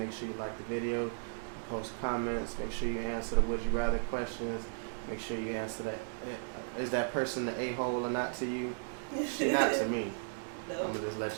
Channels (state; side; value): silent; left; digital silence